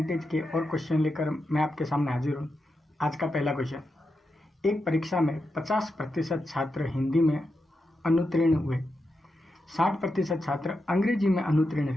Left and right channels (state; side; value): normal; both; correlation 0.87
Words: के और क्वेश्चन लेकर मैं आपके सामने हाजिर हूँ। आज का पहला क्वेश्चन, एक परीक्षा में 50% छात्र हिंदी में अनुत्तीर्ण हुए, 60% छात्र अंग्रेजी में अनुत्तीर्ण